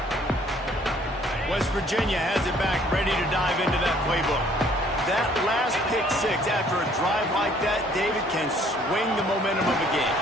West Virginia has it back, ready to dive into that playbook. That last pick six after a drive like that, David, can swing the momentum of a game.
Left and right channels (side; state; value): both; normal; correlation 0.60